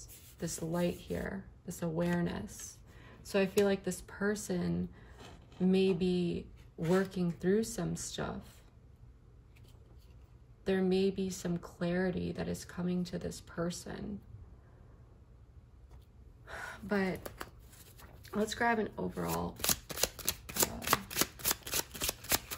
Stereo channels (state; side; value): identical; both; correlation 1.00